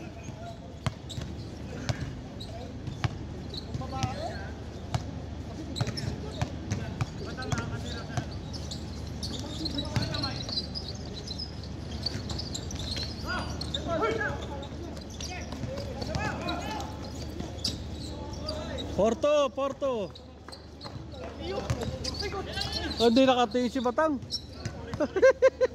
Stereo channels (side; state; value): both; identical; correlation 1.00